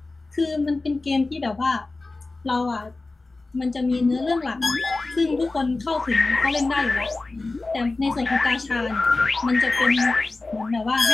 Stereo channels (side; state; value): right; quieter; 3.4 dB